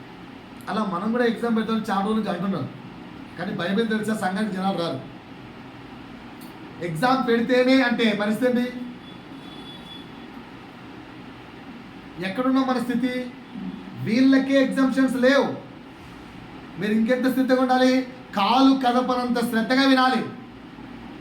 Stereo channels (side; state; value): both; identical; correlation 1.00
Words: అలా మనం కూడా ఎగ్జామ్ పెడతామని చాలా రోజుల నుంచి అంటున్నాం, కానీ బైబిల్ తెలిసే సంఘానికి జనాలు రారు. ఎగ్జామ్ పెడితేనే అంటే పరిస్థితి ఎక్కడున్నాం మన స్థితి? వీళ్ళకే ఎగ్జామ్షన్స్ లేవు. మీరు ఇంకెంత స్థితిగా ఉండాలి? కాలు కదపనంత శ్రద్ధగా వినాలి